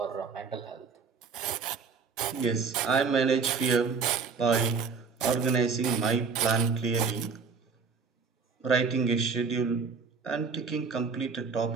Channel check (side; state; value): left; quieter; 5.2 dB